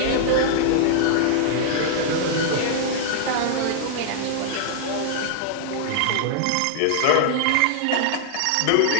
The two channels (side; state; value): both; different; correlation -0.01